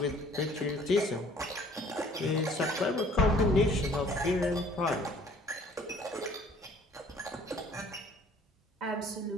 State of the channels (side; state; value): both; normal; correlation 0.55